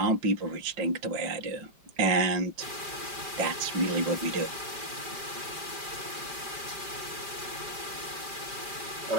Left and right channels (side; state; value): left; late; 5.0 ms